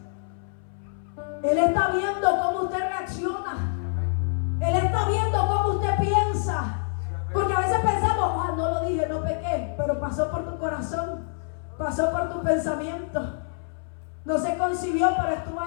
Él está viendo cómo usted reacciona. Él está viendo cómo usted piensa. Porque a veces pensamos, no lo dije, no pequé, pero pasó por tu corazón, pasó por tu pensamiento. No se concibió, pero estuvo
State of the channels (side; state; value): right; silent; 61 dB below the other